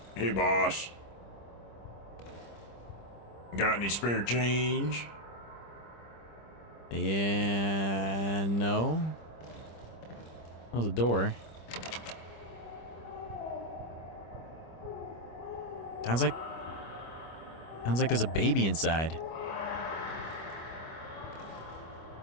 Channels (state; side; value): late; right; 25 ms